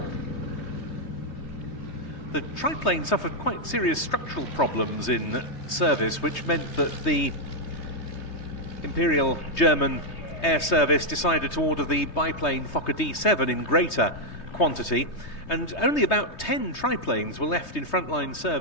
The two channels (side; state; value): right; late; 3.2 ms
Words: The triplane suffered quite serious structural problems in service, which meant that the Imperial German Air Service decided to order the biplane Fokker D7 in greater quantity, and only about 10 triplanes were left in frontline